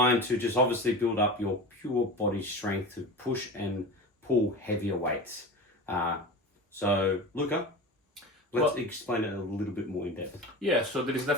to just obviously build up your pure body strength to push and pull heavier weights. So, Luca, let's explain it a little bit more in depth. Yeah, so there is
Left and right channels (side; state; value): both; normal; correlation 0.30